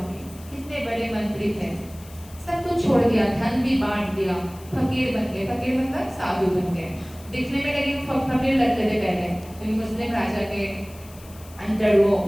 कितने बड़े मंत्री थे, सब कुछ छोड़ दिया, धन भी बांट दिया, फकीर बन गए। फकीर मतलब साधु बन गए। दिखने में लेकिन फकीर लगते थे पहले, क्योंकि मुस्लिम राजा के अंदर वो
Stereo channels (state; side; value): noise; left; hiss, 22 dB below the sound